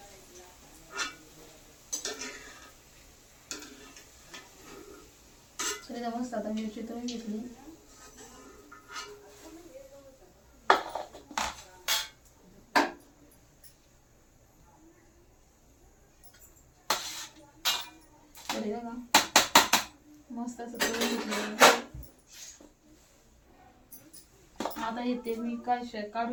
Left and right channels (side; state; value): both; identical; correlation 1.00